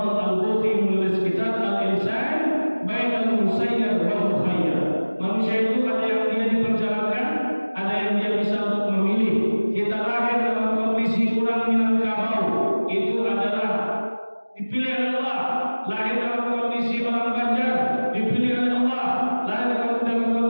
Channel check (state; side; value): inverted; both; correlation -1.00